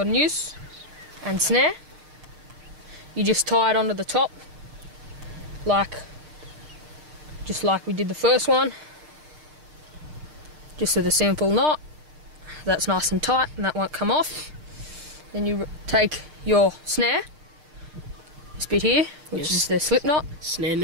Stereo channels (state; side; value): late; left; 6.6 ms